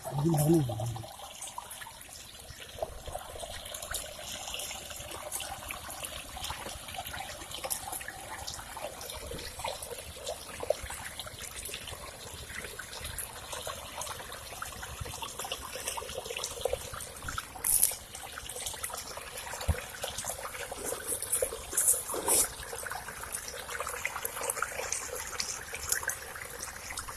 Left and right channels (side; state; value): both; identical; correlation 1.00